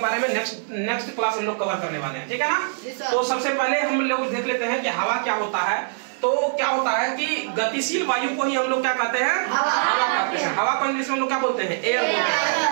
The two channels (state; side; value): silent; left; digital silence